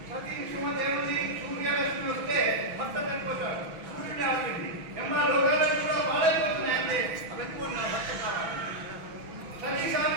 సతీ సుమతి ఏముంది, సూర్యరశ్మి వస్తే భర్త చనిపోతాడు, సూర్యుడు ఆపింది ఎమ్మా లోకాలను కూడా బాడైపోతున్నాయి అంటే అవన్నీ నా భర్త కావాలి. సతీ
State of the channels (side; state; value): left; late; 6.1 ms